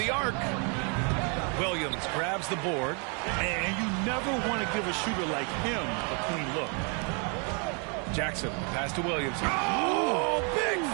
arc. Williams grabs the board. And you never want to give a shooter like him a clean look. Jackson, pass to Williams. Oh, big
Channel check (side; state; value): left; quieter; 36.4 dB